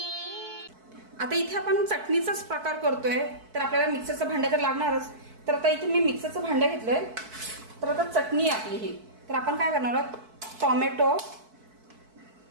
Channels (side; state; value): left; late; 4.6 ms